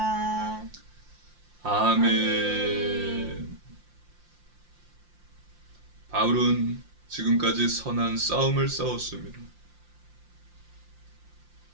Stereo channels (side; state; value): left; late; 5.7 ms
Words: 아멘. 바울은 지금까지 선한 싸움을 싸웠습니다.